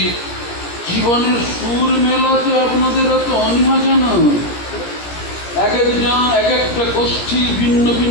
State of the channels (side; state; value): right; late; 17 ms